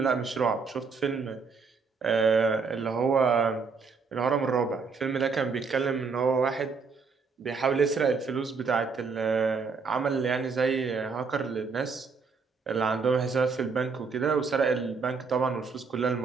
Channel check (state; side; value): quieter; left; 5.0 dB